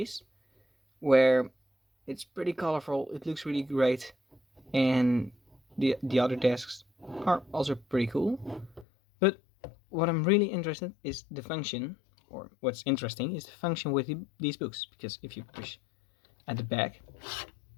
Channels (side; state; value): right; drops out; at 8.8 s